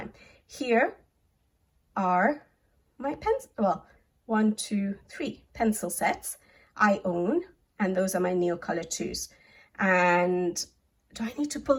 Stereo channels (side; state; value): both; identical; correlation 1.00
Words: Here are my pens, well, 1, 2, 3 pencil sets I own, and those are my Neocolor 2s. And do I need to pull